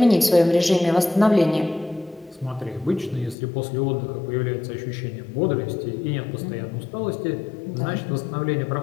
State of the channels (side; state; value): right; drops out; at 3.4 s